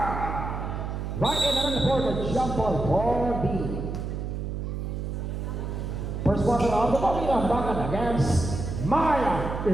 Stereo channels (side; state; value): right; noise; hum, 4 dB below the sound